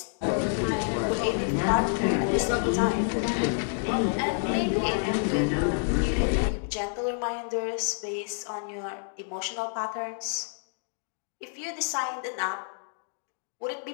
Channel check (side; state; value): right; silent; digital silence